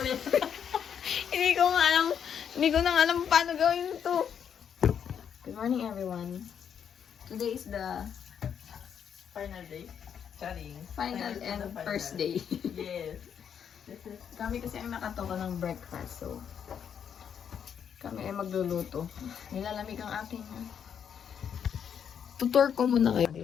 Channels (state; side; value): quieter; right; 8.1 dB